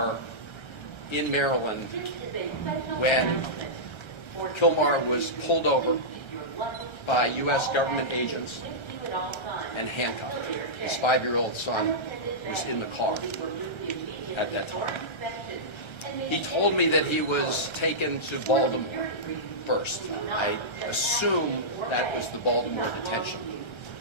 in Maryland when Kilmar was pulled over by U.S. government agents and handcuffed. His 5-year-old son was in the car at that time. He told me that he was taken to Baltimore first. I assume that was the Baltimore Detention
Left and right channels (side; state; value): right; late; 1.3 ms